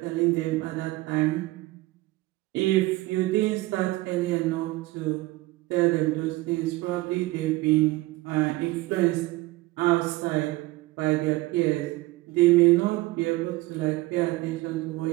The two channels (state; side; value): quieter; left; 19.8 dB